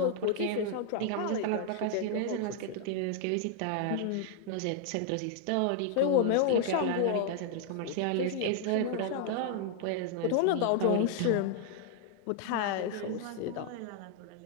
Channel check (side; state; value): both; different; correlation 0.00